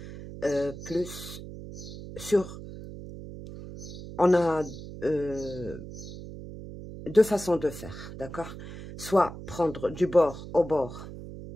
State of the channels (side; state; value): right; noise; hum, 12 dB below the sound